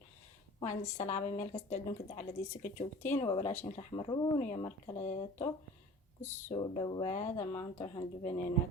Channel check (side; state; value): both; normal; correlation 0.43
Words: وعند السلام ميل كستعدون كده على دي سكتشوكتين وبلاشين رحمرون يا مركلاتو كسو دوادا ما أنتو حندبنينا